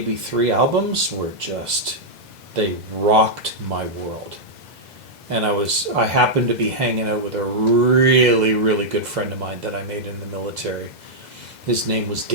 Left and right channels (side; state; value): left; late; 2.0 ms